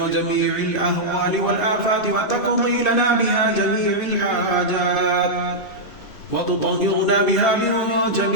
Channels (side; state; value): right; late; 2.9 ms